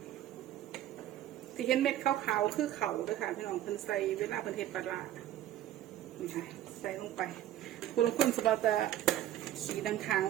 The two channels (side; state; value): left; quieter; 12.5 dB